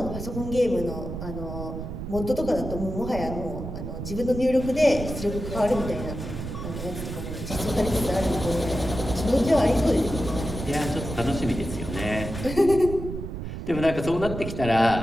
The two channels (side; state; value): right; noise; rumble, 7 dB below the sound